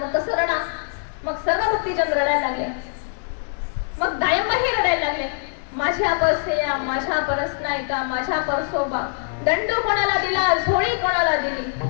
तसं रडा. मग सर्व भक्तिजन रडायला लागले. मग दायंबाही रडायला लागले. माझ्या परसेया, माझ्या परसनायका, माझ्या परसोबा, दंडू कोणाला दिला, झोळी कोणाला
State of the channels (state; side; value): silent; right; digital silence